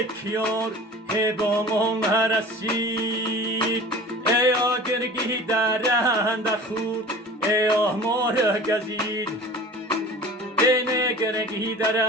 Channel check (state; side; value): normal; both; correlation 0.41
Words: کیار هی با ما نرسید ای آگرگی درند خود ای آهمار گزید ای نگرگی